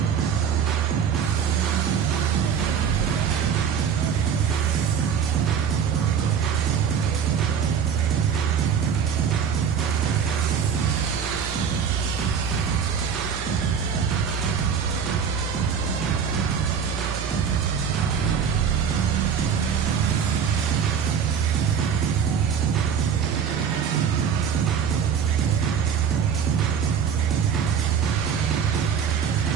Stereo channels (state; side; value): quieter; left; 7.3 dB